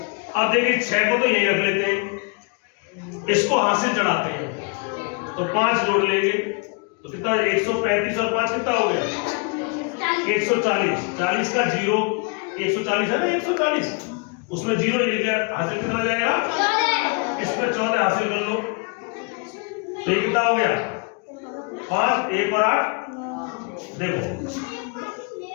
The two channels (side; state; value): right; quieter; 33.4 dB